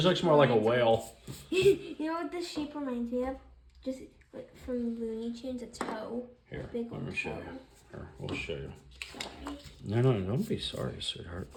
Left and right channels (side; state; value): both; identical; correlation 1.00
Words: shape looks more like a reminds me whale. of. You know what this shape reminds me of? Just like from Looney Tunes, a toe. Here, Big let me old show toe. you. Here, we'll show you. Sorry. No, don't be sorry, sweetheart.